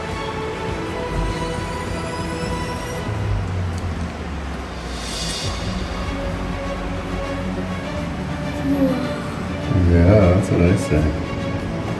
Yeah, that's what I say.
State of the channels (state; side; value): identical; both; correlation 1.00